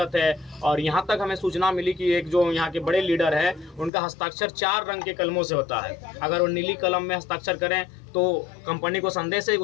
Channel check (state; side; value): drops out; right; at 3.9 s